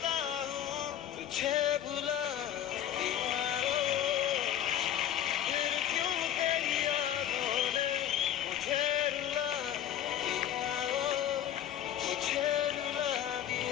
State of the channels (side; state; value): right; quieter; 10.9 dB